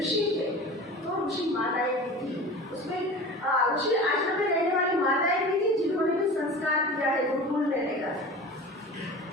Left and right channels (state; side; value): normal; both; correlation 0.36